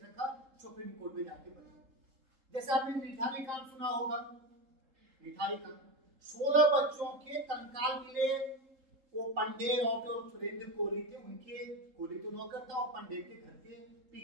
रखा, सुप्रीम कोर्ट में जाके बनी। जैसे आपने निठारी कांड सुना होगा, निठारी कांड 16 बच्चों के कंकाल मिले, वो पंडेर और जो सुरेंद्र कोहली थे, उनके, कोहली तो नौकर था और पंडेर के घर के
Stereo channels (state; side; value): late; left; 3.8 ms